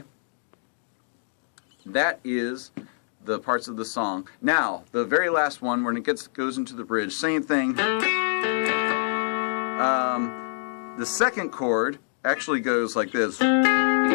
that is the parts of the song. Now, the very last one, when it goes into the bridge, same thing. The second chord actually goes like this.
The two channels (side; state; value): right; silent; digital silence